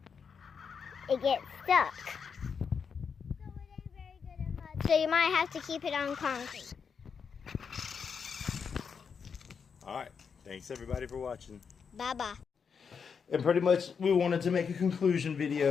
It gets stuck. So it ain't very good in mud. So you might have to keep it on concrete. Alright, thanks everybody for watching. Bye-bye. And pretty much we wanted to make a conclusion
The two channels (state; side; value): quieter; right; 6.2 dB